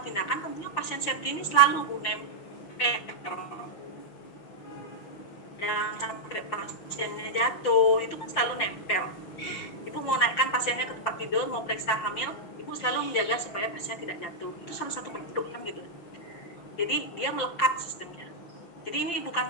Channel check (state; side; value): late; right; 5.8 ms